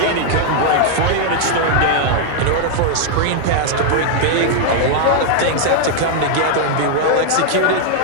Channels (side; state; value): both; different; correlation 0.00